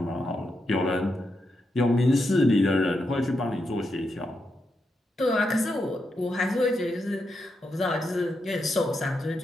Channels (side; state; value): both; normal; correlation 0.84